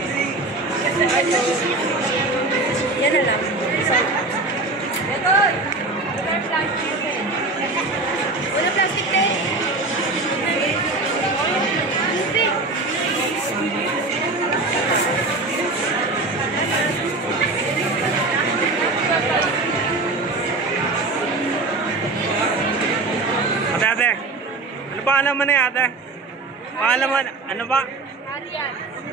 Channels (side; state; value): left; quieter; 3.3 dB